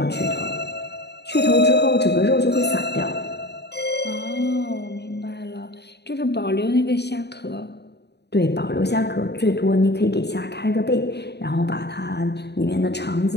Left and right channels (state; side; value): late; right; 0.49 ms